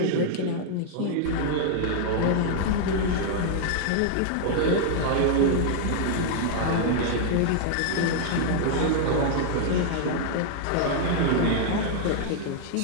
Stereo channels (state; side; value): different; both; correlation -0.01